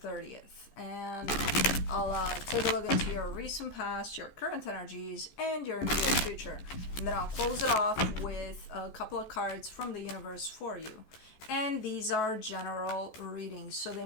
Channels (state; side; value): late; right; 14 ms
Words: And I'll take a look into your recent past, your current energies, and your immediate future. And then I'll close it off with a couple of cards from the universe for you. And these are general readings, so they